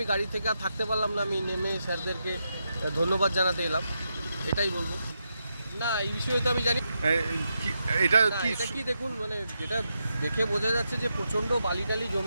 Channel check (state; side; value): inverted; both; correlation -0.85